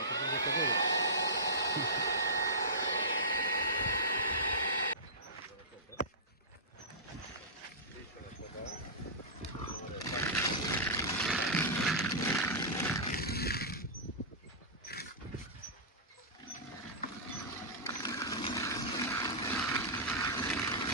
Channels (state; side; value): normal; both; correlation -0.17